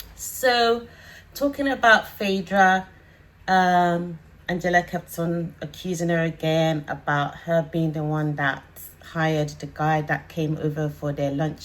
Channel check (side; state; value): both; identical; correlation 1.00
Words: So talking about Phaedra, Angela kept on accusing her again about her being the one that hired the guy that came over for their